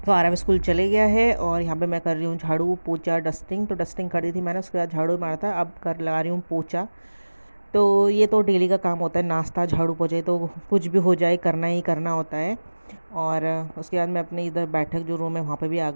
तो आरव स्कूल चले गया है। और यहाँ पे मैं कर रही हूँ झाड़ू पोछा डस्टिंग। तो डस्टिंग कर दी थी मैंने, उसके बाद झाड़ू मारा था, अब कर लगा रही हूँ पोछा। तो ये तो डेली का काम होता है, नाश्ता झाड़ू पोछे तो कुछ भी हो जाए करना ही करना होता है। और उसके बाद मैं अपने इधर बैठक जो रूम है वहाँ पे भी आ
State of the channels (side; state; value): both; inverted; correlation -1.00